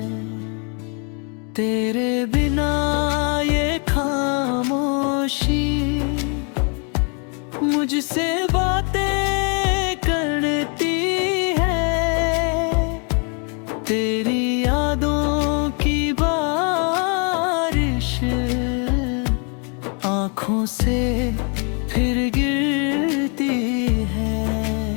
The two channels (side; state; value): right; quieter; 38.1 dB